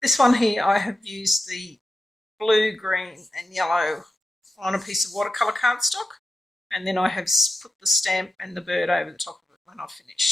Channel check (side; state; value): both; normal; correlation 0.89